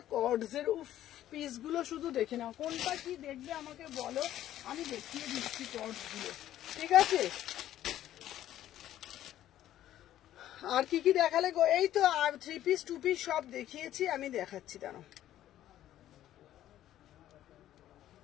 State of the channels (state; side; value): quieter; right; 12.6 dB